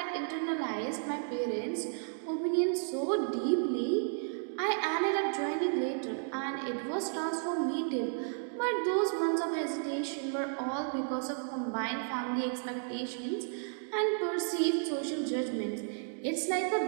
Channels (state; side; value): silent; left; digital silence